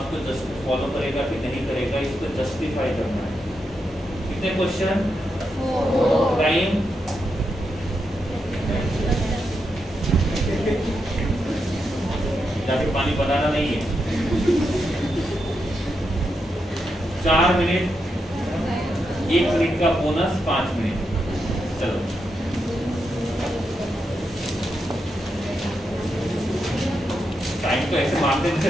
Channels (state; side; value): normal; both; correlation 0.84